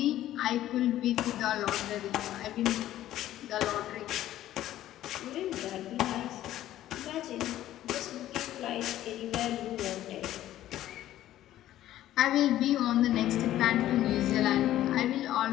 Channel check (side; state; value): right; quieter; 13.4 dB